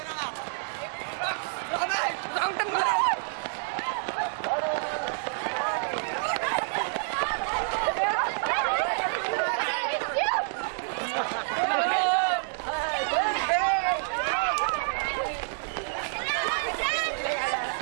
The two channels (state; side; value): silent; left; digital silence